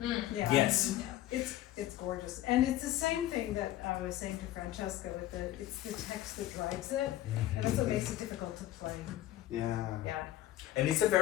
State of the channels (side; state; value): right; quieter; 14.0 dB